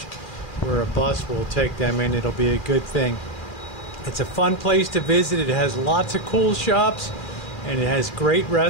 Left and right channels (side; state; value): right; late; 2.4 ms